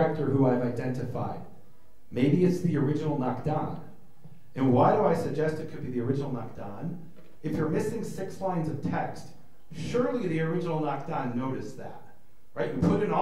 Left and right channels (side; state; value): both; identical; correlation 1.00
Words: who I've identified? Maybe it's the original Nakdan. And why do I suggest it could be the original Nakdan? If you're missing 6 lines of text, surely the original Nakdan noticed that. Right? You put in